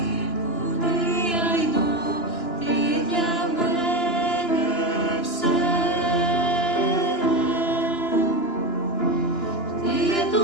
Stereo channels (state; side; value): late; right; 2.9 ms